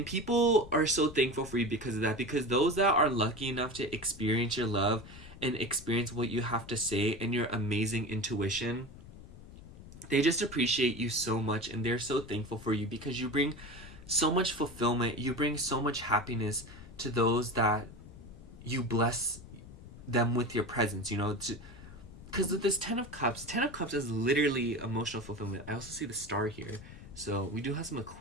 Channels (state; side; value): noise; left; rumble, 17 dB below the sound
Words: people are so thankful for you because of that. Because those that are lucky enough to experience your love and experience what you have to say and your amazing intuition, they just appreciate you so much, and they're so thankful for you because you bring so much fulfillment, you bring so much happiness to those that you bless them with your presence, because with this Ten of Cups is literally emotional fulfillment. I also see the star here, so we do have some